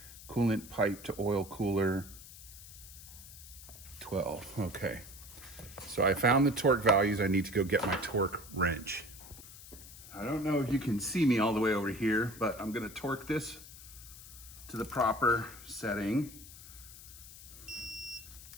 Coolant pipe to oil cooler, 12, okay. So I found the torque values. I need to go get my torque wrench. I don't know if you can see me all the way over here, but I'm gonna torque this to the proper setting.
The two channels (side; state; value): left; noise; hiss, 16 dB below the sound